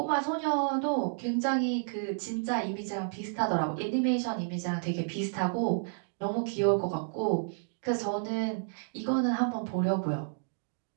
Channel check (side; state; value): left; silent; digital silence